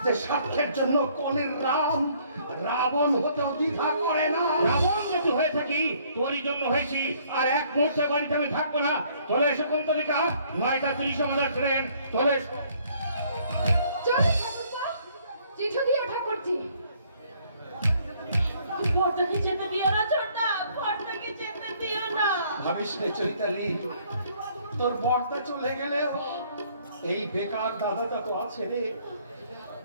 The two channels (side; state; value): both; inverted; correlation -0.62